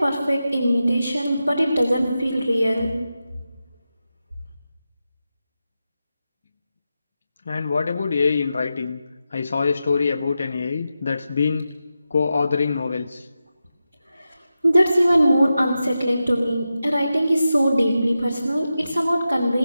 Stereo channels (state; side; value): inverted; both; correlation -0.91